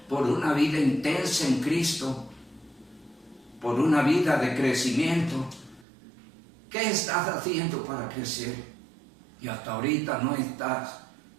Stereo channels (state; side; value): drops out; left; at 5.9 s